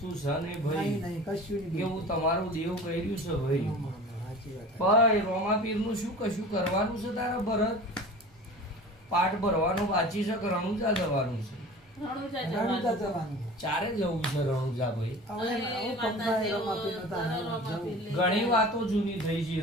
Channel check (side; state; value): both; normal; correlation 0.39